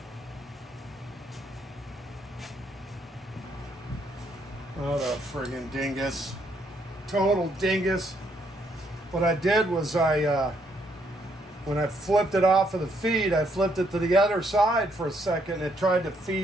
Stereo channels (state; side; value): normal; both; correlation 0.72